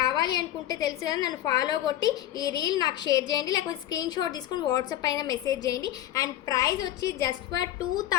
అనుకుంటే తెలుసు కదా, నన్ను ఫాలో కొట్టి ఈ రీల్ నాకు షేర్ చేయండి, లేకపోతే స్క్రీన్ షాట్ తీసుకొని వాట్సాప్ పైన మెసేజ్ చేయండి. అండ్ ప్రైస్ వచ్చి జస్ట్ ఫర్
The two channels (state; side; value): quieter; right; 13.0 dB